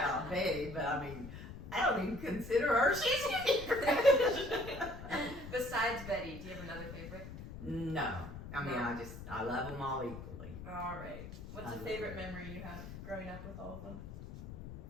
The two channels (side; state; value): left; noise; rumble, 11 dB below the sound